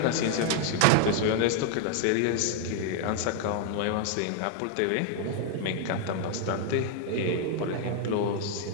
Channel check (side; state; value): both; different; correlation 0.00